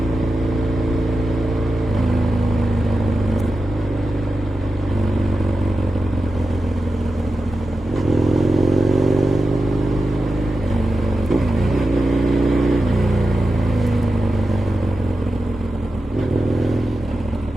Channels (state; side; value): normal; both; correlation 0.91